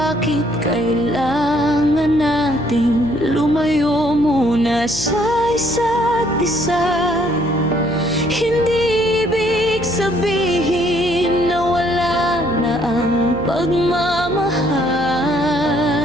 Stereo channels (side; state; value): left; noise; hum, 14 dB below the sound